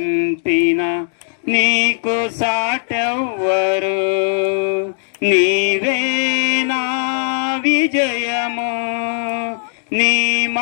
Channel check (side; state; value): right; silent; 67 dB below the other